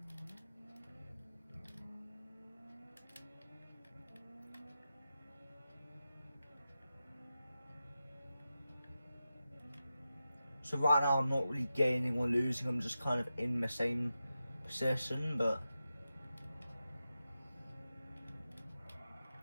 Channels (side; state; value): both; inverted; correlation -0.91